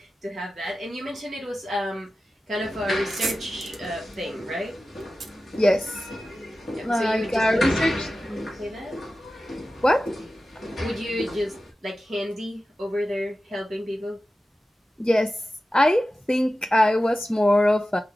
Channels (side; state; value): both; normal; correlation 0.94